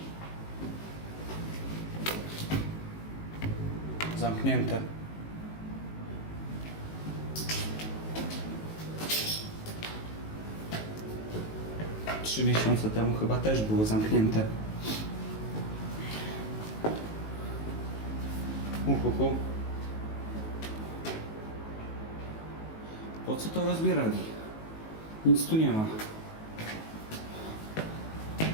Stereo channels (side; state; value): right; late; 19 ms